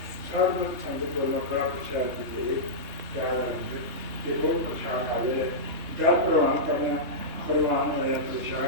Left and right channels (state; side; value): late; left; 3.2 ms